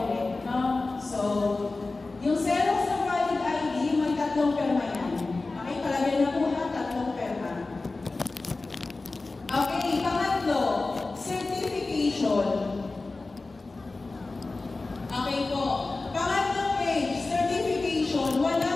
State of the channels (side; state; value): right; quieter; 3.4 dB